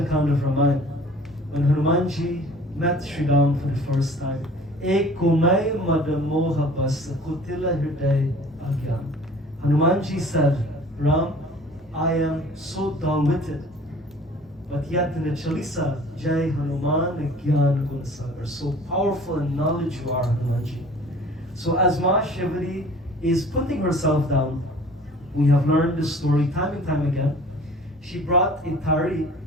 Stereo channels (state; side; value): normal; both; correlation 0.48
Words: Kand of Ramayana, when Hanumanji met Sri Ram for the first time, Ek kumai madamoha bas kutila hriday agyan. Hanumanji said, Ram, I am so dull-witted. But yet in the Chalisa, Jai Hanuman Gyan Gunsagar, so powerful in knowledge you are, Hanumanji. So as Ma Shivari is putting herself down, we have learned this story time and time again. She brought a thari